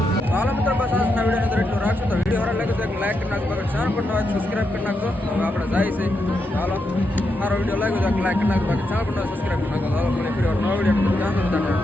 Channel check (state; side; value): normal; both; correlation 0.83